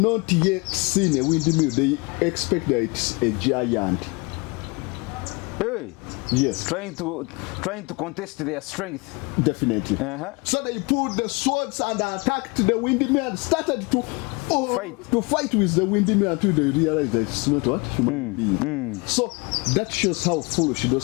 yet seen a windmill. They expect that it's a giant. Hey. Yes. Trying to contest their strength. Definitely. So they pulled the swords and attacked the windmill and started to fight with the windmill until they realized that it's not what human being. So that shows how foolish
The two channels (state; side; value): quieter; right; 28.2 dB